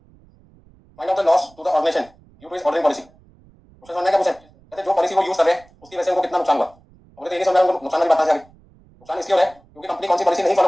find out the loss to the organisation due to its ordering policy. Question समझना है क्या मुझे? कहते जो पॉलिसी वो यूज कर रहे हैं उसकी वजह से उनको कितना नुकसान हुआ। मुझे तो ये नहीं समझ उनको नुकसान वाली बात है। नुकसान इसलिए हो रहा है क्योंकि कंपनी कौन सी पॉलिसी नहीं फॉलो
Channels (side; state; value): right; noise; rumble, 28 dB below the sound